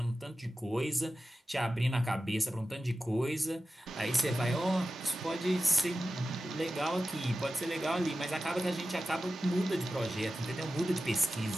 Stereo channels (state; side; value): normal; both; correlation 0.94